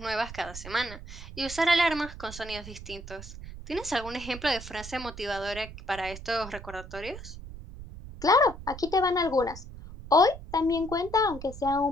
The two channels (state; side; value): noise; right; rumble, 13 dB below the sound